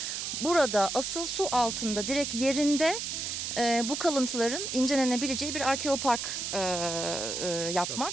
burada asıl su altında direkt yerinde bu kalıntıların incelenebileceği bir arkeopark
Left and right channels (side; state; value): right; noise; hiss, 4 dB below the sound